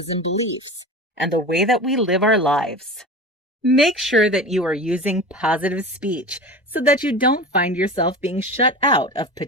and beliefs, and the way that we live our lives. Make sure that you are using positive speech so that you don't find yourself being shut out of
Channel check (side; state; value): both; normal; correlation 0.31